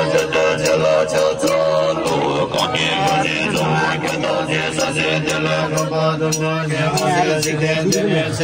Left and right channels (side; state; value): both; identical; correlation 1.00